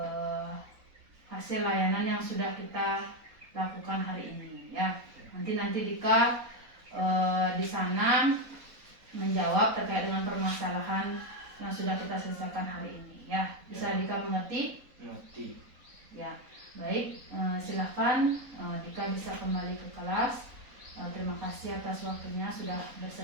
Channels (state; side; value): late; left; 3.9 ms